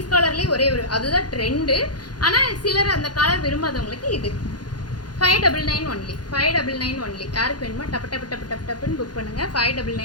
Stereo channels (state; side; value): late; right; 0.70 ms